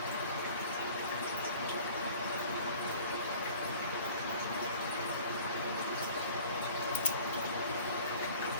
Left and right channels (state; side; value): inverted; both; correlation -0.47